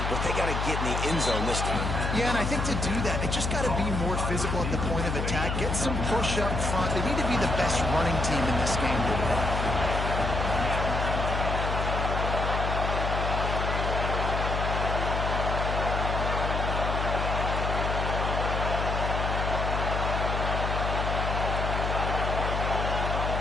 but they got to get in the end zone this time. Yeah, and I think to do that, they just got to be more physical at the point of attack, get some push up front. They need to be the best running team in this game today.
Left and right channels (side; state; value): left; noise; hum, 1 dB below the sound